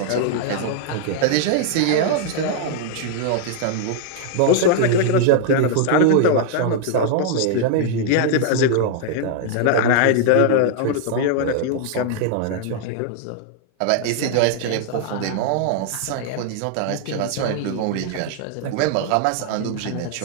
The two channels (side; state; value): both; different; correlation 0.00